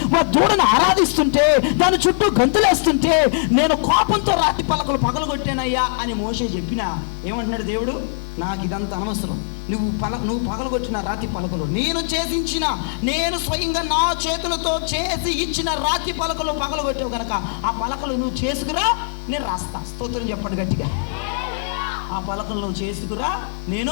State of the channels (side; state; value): right; silent; digital silence